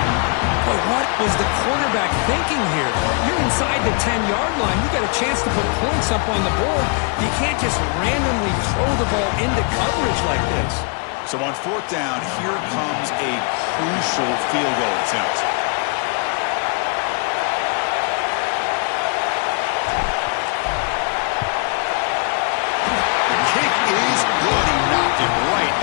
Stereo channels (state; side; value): quieter; right; 37.9 dB